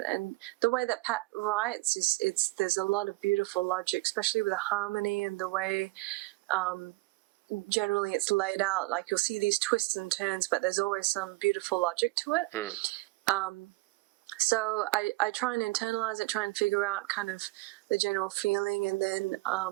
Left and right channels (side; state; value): left; quieter; 22.3 dB